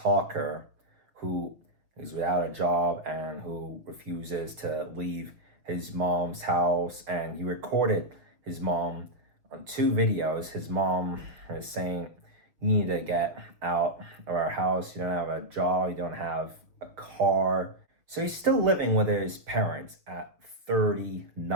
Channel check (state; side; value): late; left; 6.6 ms